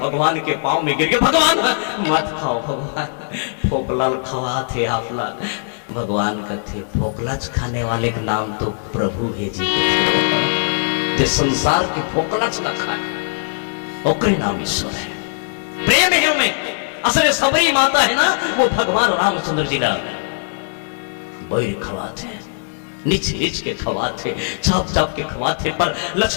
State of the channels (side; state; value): right; silent; 66 dB below the other